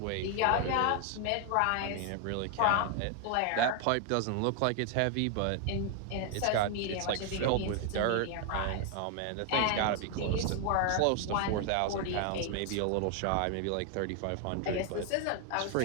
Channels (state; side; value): different; both; correlation 0.00